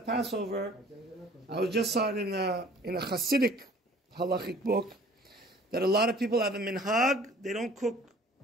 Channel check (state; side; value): normal; both; correlation 0.51